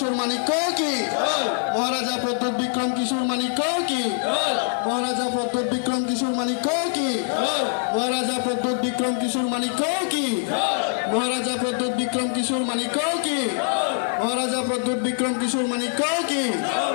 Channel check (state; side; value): silent; right; digital silence